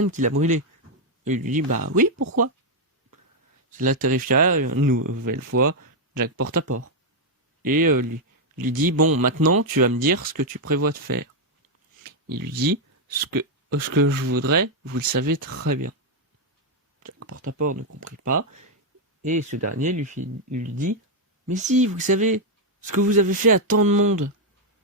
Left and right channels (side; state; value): both; normal; correlation 0.00